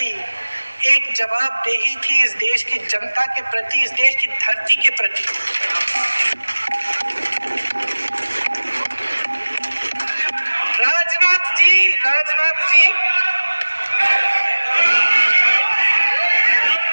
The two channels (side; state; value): both; inverted; correlation -1.00